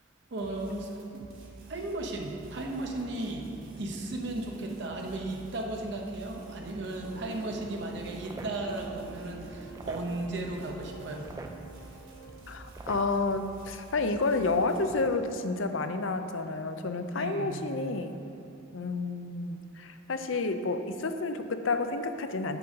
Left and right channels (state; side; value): normal; both; correlation 0.06